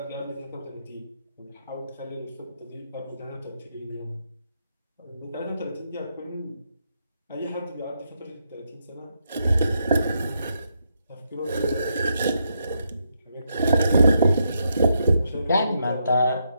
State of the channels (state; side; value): inverted; both; correlation -0.79